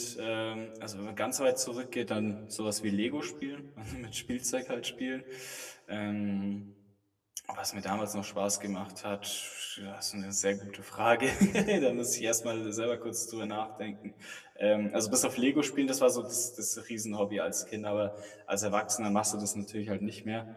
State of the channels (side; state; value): both; identical; correlation 1.00